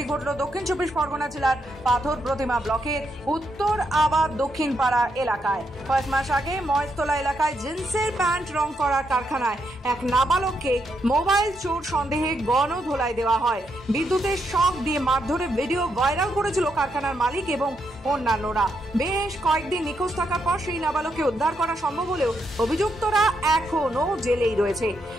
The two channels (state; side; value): normal; both; correlation 0.80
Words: ঘটল দক্ষিণ চব্বিশ পরগনা জেলার পাথর প্রতিমা ব্লকের উত্তর আবাদ দক্ষিণ পাড়া এলাকায়। কয়েক মাস আগে মহেশতলা এলাকায় জিন্সের প্যান্ট রং করা কারখানায় এক নাবালককে মোবাইল চোর সন্দেহে গণধোলাই দেওয়া হয়। বিদ্যুতের শক দিয়ে মারধরে ভিডিও ভাইরাল করেছিল কারখানার মালিক এবং অন্যান্যরা। বেশ কয়েকদিন নিখোঁজ থাকার পর সেই নাবালককে উদ্ধার করা সম্ভব হলেও অভিযুক্তরা এখনো জেলেই রয়েছে।